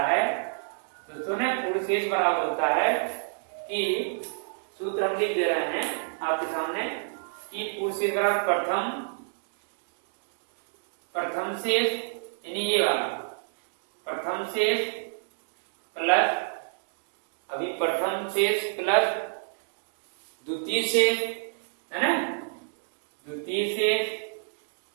है दोस्तों ने, पूर्ण शेष बराबर होता है कि सूत्र हम लिख दे रहे हैं आपके सामने कि पूर्ण शेष बराबर प्रथम शेष, यानी ये वाला प्रथम शेष प्लस, अभी प्रथम शेष प्लस द्वितीय शेष है ना, द्वितीय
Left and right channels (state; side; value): silent; left; digital silence